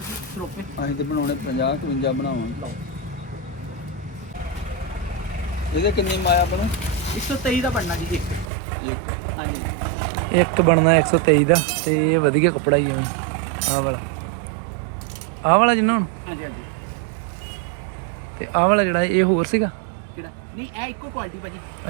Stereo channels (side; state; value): left; drops out; at 8.5 s